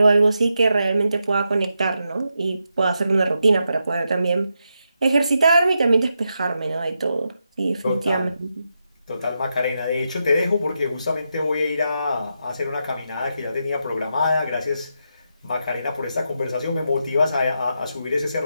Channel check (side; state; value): both; inverted; correlation -0.85